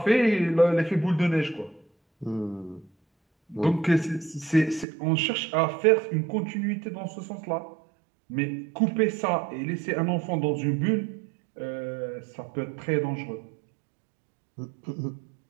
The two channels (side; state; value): left; drops out; at 4.9 s